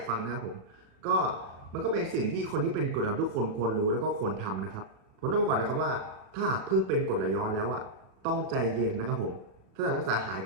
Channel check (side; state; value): left; late; 37 ms